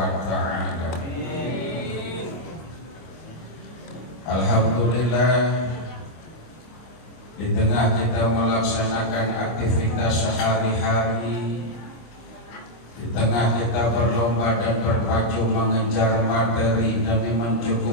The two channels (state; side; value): late; right; 25 ms